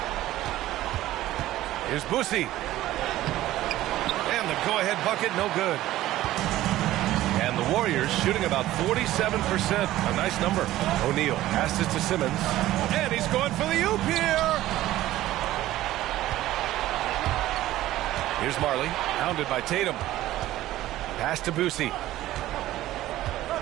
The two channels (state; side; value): quieter; left; 15.1 dB